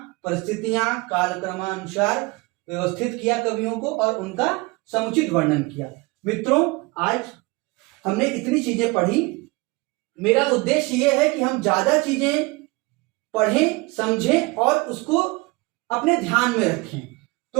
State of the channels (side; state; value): left; quieter; 24.8 dB